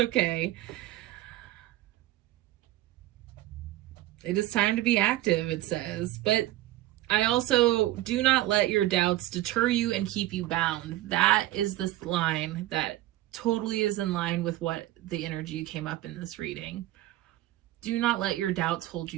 It is time to be active, it says. But I also, do not let your doubts deter you and keep you bound. That is this line that totally is in line with what the energy came up in this reading. Do not let your doubts hold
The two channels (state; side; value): quieter; left; 15.6 dB